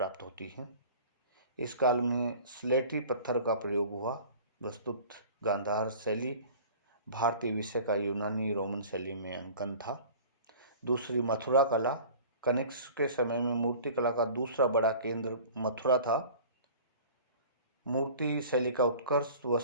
होती हैं। इस काल में स्लेटी पत्थर का प्रयोग हुआ। वस्तुत गांधार शैली भारतीय विषय का यूनानी रोमन शैली में अंकन था। दूसरी मथुरा कला, कनिष्क के समय में मूर्ति कला का दूसरा बड़ा केंद्र मथुरा था। मूर्ति शैली का उत्कर्ष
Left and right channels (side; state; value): both; inverted; correlation -0.44